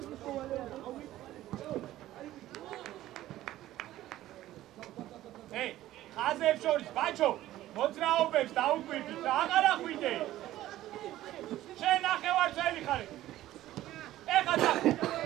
ხაზებს შორის ბაჩო მოძრაობებს დაუკვირდით და აღარ ახვიდე შენ ნახევარწელი ხარ ეხა და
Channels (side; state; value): left; quieter; 14.6 dB